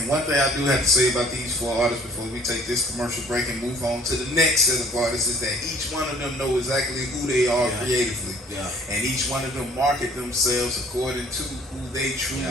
one thing I do have to say about these 4 artists before we take this commercial break and move on to the next set of artists is that each one of them know exactly who they are Yeah. creatively. Yeah. And each one of them market themselves according to who they truly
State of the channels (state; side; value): normal; both; correlation 0.55